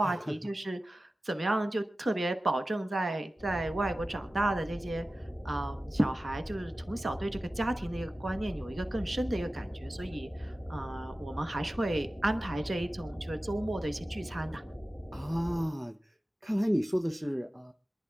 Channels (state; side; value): normal; both; correlation 0.95